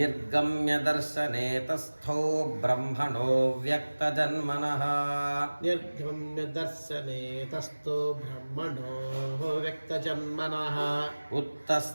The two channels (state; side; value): inverted; both; correlation -1.00